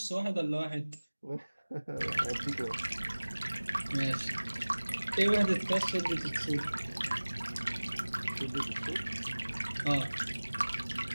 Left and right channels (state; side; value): inverted; both; correlation -1.00